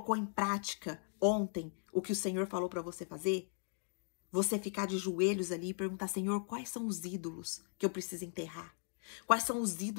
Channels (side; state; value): right; silent; 52 dB below the other